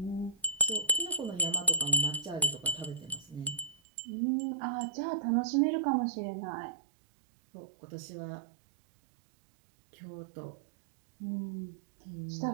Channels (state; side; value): drops out; left; at 3.8 s